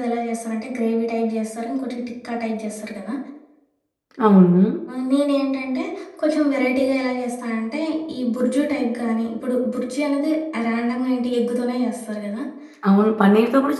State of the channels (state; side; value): identical; both; correlation 1.00